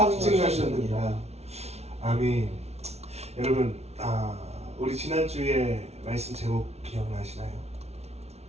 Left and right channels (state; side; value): late; left; 0.31 ms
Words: 아멘. 여러분, 우리 지난주에 말씀 제목 기억나시나요?